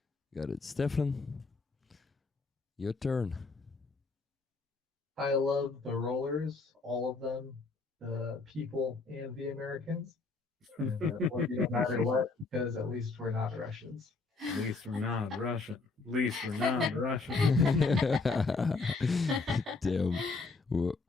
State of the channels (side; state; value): right; quieter; 4.0 dB